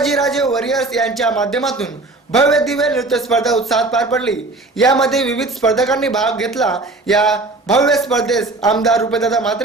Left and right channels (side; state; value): left; quieter; 3.1 dB